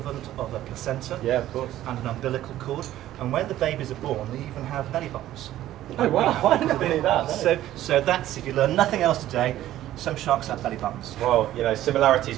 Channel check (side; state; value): left; quieter; 13.6 dB